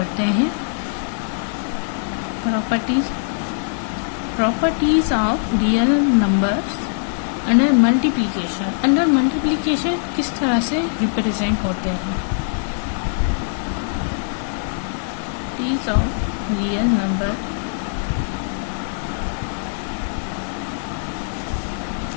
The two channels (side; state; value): right; silent; digital silence